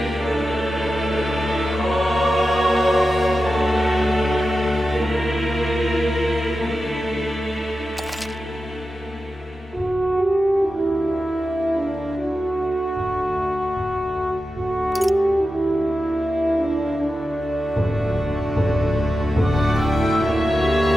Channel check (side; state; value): both; normal; correlation 0.91